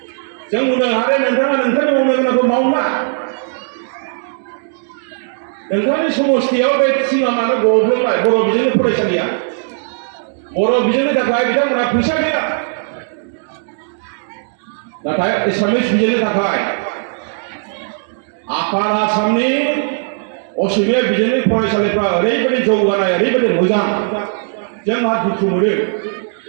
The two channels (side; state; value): left; silent; digital silence